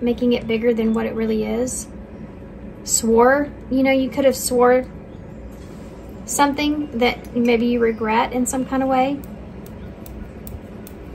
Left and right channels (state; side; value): identical; both; correlation 1.00